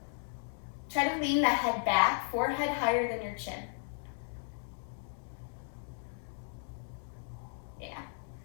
Try to lean the head back, forehead higher than your chin. Yeah.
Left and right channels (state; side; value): silent; right; digital silence